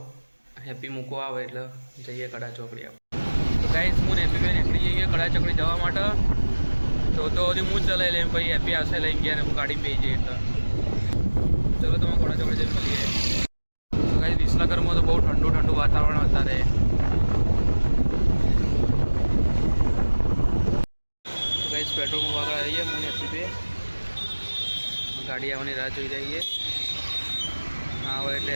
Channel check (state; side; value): inverted; both; correlation -1.00